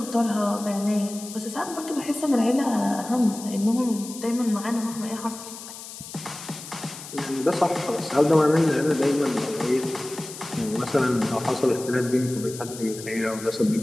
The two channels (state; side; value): noise; left; hiss, 13 dB below the sound